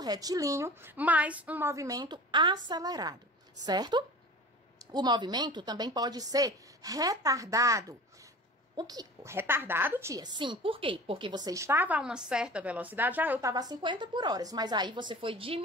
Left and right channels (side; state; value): both; normal; correlation 0.39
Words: mas um movimento acelerado, certo? O movimento também pode ser retardado. Retardado, tia? Sim, por quê? Porque você estava a uma certa velocidade, eu estava a 50 por hora, mas aí você foi